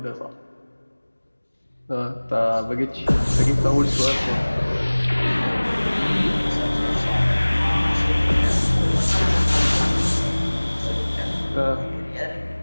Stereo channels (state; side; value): inverted; both; correlation -1.00